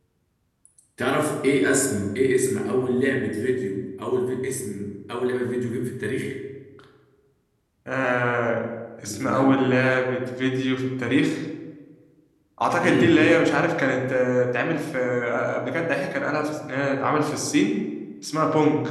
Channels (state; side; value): identical; both; correlation 1.00